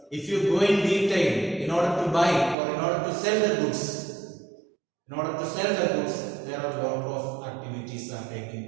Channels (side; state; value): left; drops out; at 2.6 s